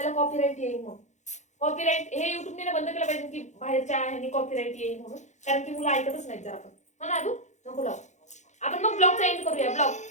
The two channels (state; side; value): late; right; 0.34 ms